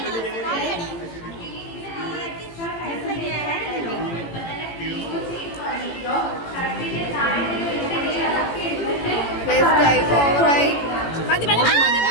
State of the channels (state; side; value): late; right; 18 ms